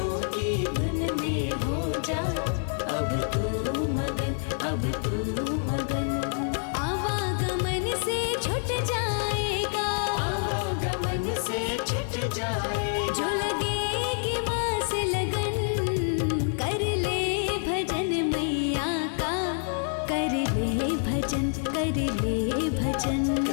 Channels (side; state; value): right; silent; 60 dB below the other